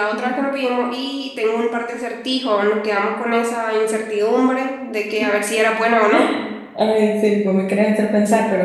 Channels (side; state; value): both; identical; correlation 1.00